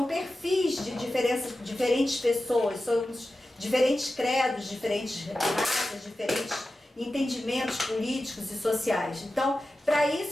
perfis de diferentes pessoas, somos diferentes credos, diferentes raças, diferentes entendimentos políticos e sociais. Então, para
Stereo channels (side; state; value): both; normal; correlation 0.93